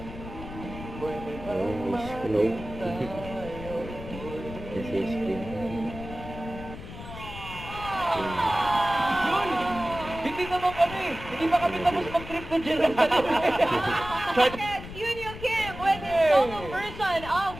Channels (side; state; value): left; noise; rumble, 12 dB below the sound